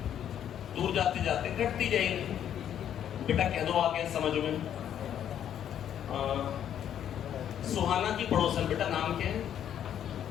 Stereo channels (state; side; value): quieter; right; 9.8 dB